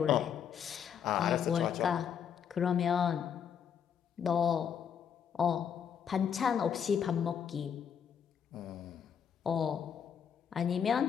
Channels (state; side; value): quieter; right; 7.9 dB